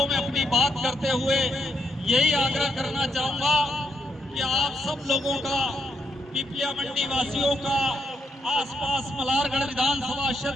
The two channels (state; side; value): normal; both; correlation 0.78